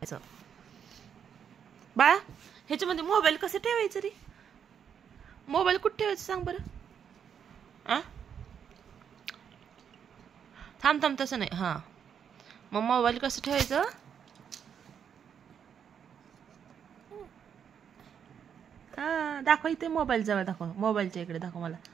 बाळा ह्याच्यामध्ये मोबाईल कसं ठेवायचं रे? मोबाईल कुठे ठेवायचं सांग बरं. आ थांब थांब तसं नाही. हा मग मोबाईल कसं ठेवायचं? हा दाखव इथे. मोबाईल जवळ दाखव. मोबाईलच्या इकडे दाखव मला.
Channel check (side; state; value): left; quieter; 7.9 dB